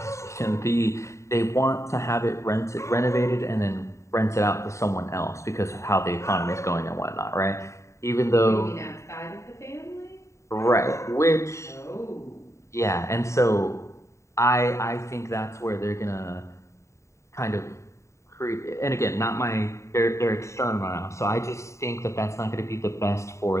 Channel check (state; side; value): late; right; 0.14 ms